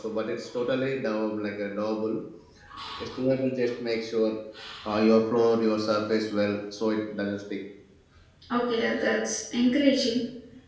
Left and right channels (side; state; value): both; identical; correlation 1.00